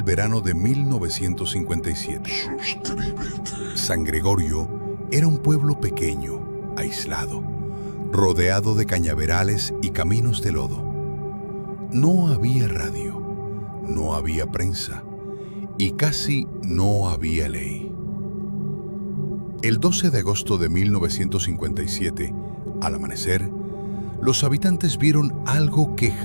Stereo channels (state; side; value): inverted; both; correlation -1.00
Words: verano de 1957. San Gregorio era un pueblo pequeño, aislado, rodeado de cañaverales y caminos de lodo. No había radio, no había prensa y casi no había ley. El 12 de agosto de 1957, al amanecer, los habitantes vieron algo que